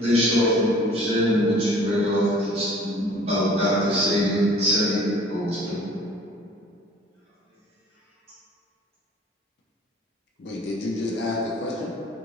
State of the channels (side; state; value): both; normal; correlation 0.50